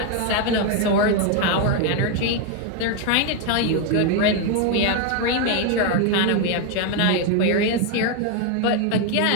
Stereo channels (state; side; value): different; both; correlation 0.01